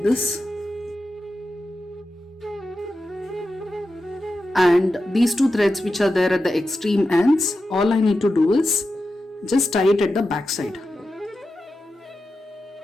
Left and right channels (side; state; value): both; normal; correlation 0.91